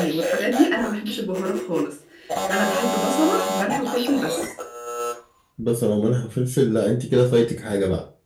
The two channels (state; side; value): identical; both; correlation 1.00